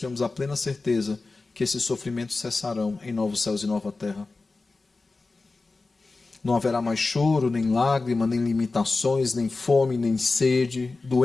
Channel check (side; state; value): right; quieter; 3.7 dB